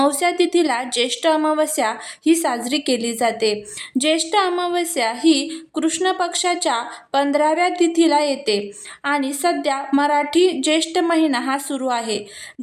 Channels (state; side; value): identical; both; correlation 1.00